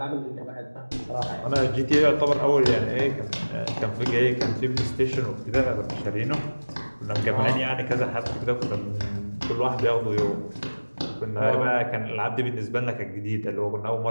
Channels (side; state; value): both; inverted; correlation -1.00